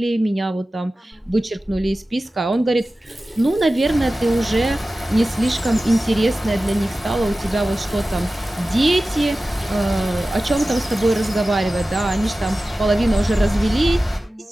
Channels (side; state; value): both; normal; correlation 0.95